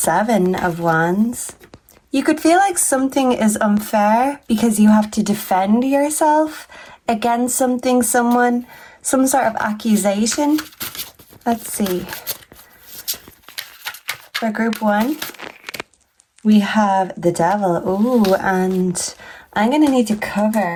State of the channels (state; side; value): identical; both; correlation 1.00